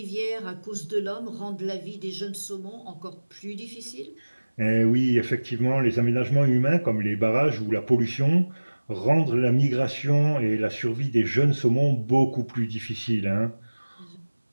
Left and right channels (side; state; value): both; inverted; correlation -1.00